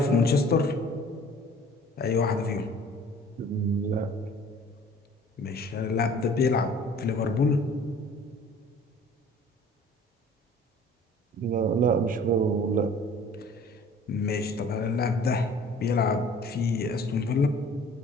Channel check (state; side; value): normal; both; correlation 0.49